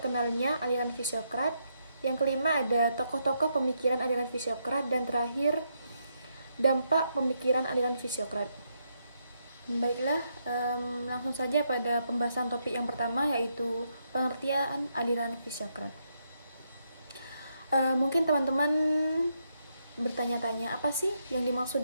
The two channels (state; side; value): inverted; both; correlation -0.79